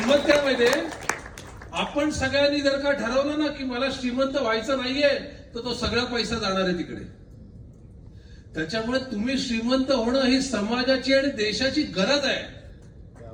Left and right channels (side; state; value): both; identical; correlation 1.00